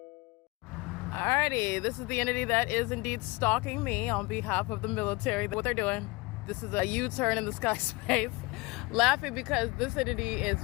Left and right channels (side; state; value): right; quieter; 24.4 dB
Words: Alrighty, this is the entity that is indeed stalking me on behalf of the military. What they're doing. This is a U-turn in the sky space. Laughing because this entity is